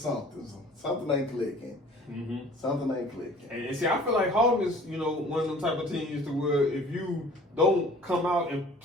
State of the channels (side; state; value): both; normal; correlation 0.49